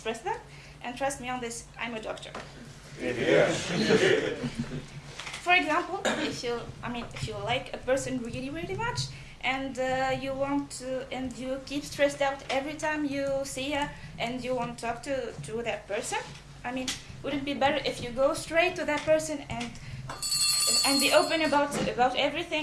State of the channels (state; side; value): identical; both; correlation 1.00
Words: them? And trust me on this, I'm a doctor. For example, if you like a person really, really much, and you keep stressed out every time you see her, and you want to talk to that person, wouldn't it be better if you go straight to that person and be open about